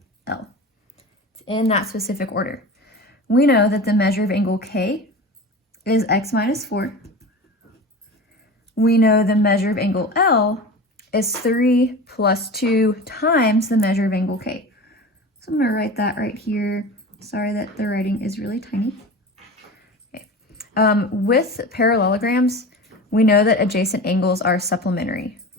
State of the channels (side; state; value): both; normal; correlation 0.32